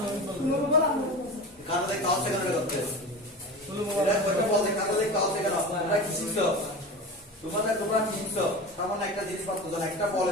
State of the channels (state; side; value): normal; both; correlation 0.30